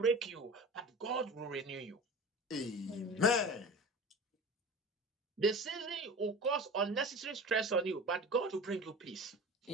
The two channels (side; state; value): both; normal; correlation 0.36